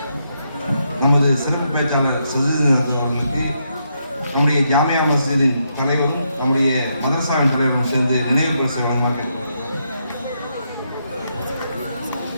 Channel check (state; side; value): inverted; both; correlation -0.79